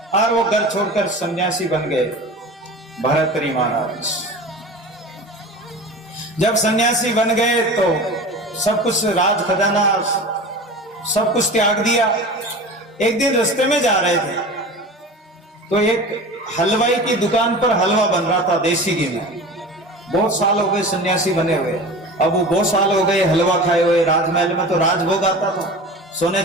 और वो घर छोड़कर सन्यासी बन गए भरतरी महाराज। जब सन्यासी बन गए तो सब कुछ, राज खजाना सब कुछ त्याग दिया। एक दिन रास्ते में जा रहे थे तो एक हलवाई की दुकान पर हलवा बन रहा था देसी घी में। बहुत साल हो गए सन्यासी बने हुए, अब वो बहुत साल हो गए हलवा खाए हुए। राजमहल में तो राजभोग आता था, सोने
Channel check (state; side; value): normal; both; correlation 0.34